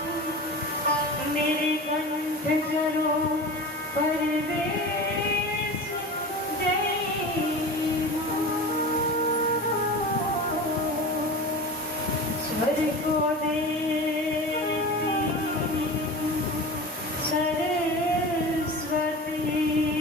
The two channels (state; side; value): normal; both; correlation 0.31